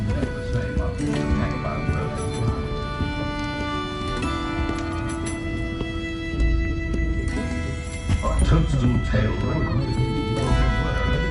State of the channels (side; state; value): both; identical; correlation 1.00